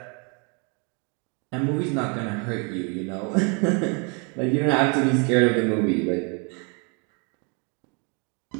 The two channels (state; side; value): quieter; left; 34.8 dB